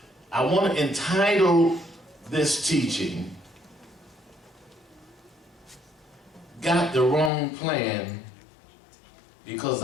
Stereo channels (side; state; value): right; drops out; at 7.3 s